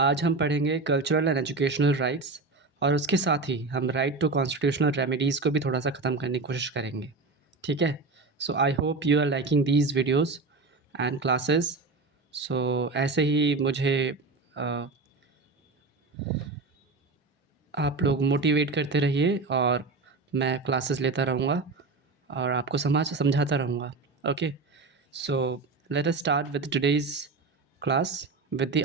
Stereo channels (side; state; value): left; quieter; 3.8 dB